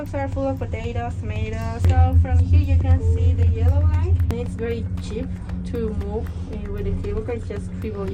are full of potatoes, tomatoes. So from here you can see the yellow line. It's very cheap to move with the cable car. It's just 3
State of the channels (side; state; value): both; identical; correlation 1.00